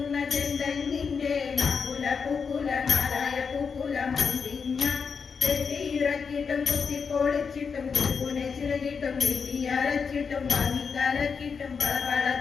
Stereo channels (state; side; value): quieter; right; 5.8 dB